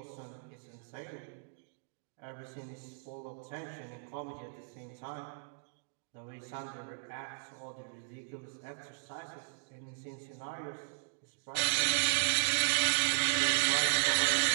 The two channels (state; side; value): silent; left; digital silence